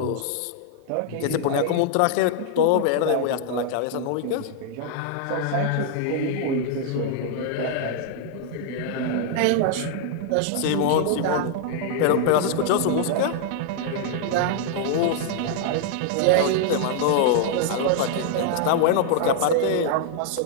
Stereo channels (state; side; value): different; both; correlation -0.01